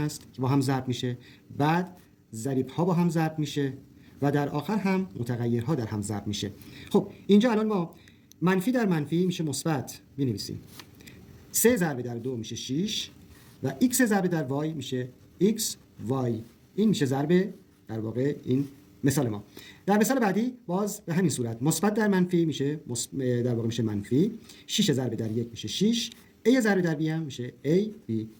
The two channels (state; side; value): identical; both; correlation 1.00